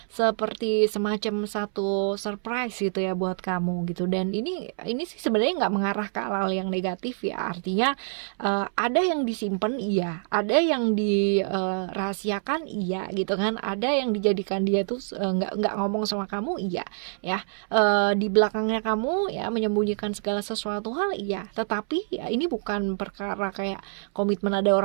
semacam satu surprise gitu ya buat kamu gitu. Dan ini sih sebenarnya nggak mengarah ke hal yang negatif ya, artinya ada yang disimpan iya, ada yang dirahasiakan iya gitu kan, ada yang dijadikan dia tuh nggak ngomong sama kamu iya ya, di belakangnya kamu ya menyembunyikan segala sesuatu hal iya, tetapi ya ini bukan perkara kayak komitmen ada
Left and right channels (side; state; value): left; silent; 61 dB below the other